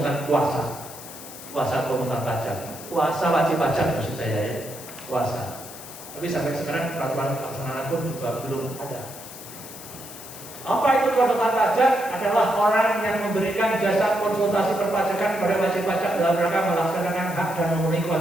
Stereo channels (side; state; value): left; noise; hiss, 14 dB below the sound